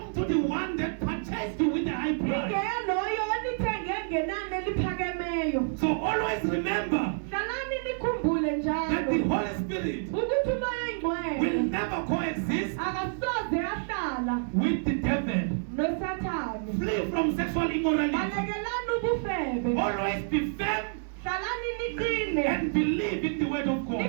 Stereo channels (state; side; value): silent; left; digital silence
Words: to the one that purchased you with the high price. So always remember that the Holy Spirit will never coexist with the devil. Flee from sexual immorality. Always be firm and believe in the word of God.